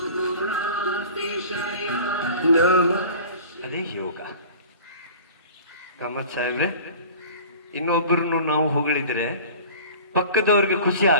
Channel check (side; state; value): both; inverted; correlation -0.42